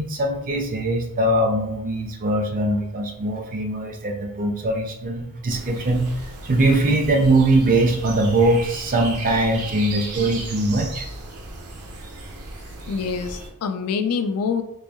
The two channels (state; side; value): normal; both; correlation 0.44